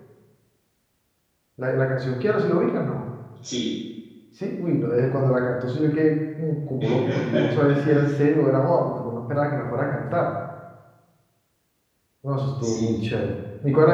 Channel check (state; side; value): identical; both; correlation 1.00